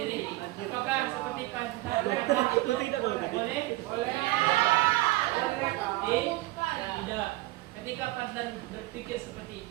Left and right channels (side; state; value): left; quieter; 18.9 dB